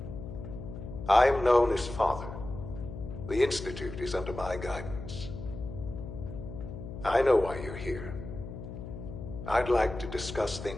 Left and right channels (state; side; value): noise; left; hum, 9 dB below the sound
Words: I'm known as Father. The Institute is under my guidance. I know why you're here. I'd like to discuss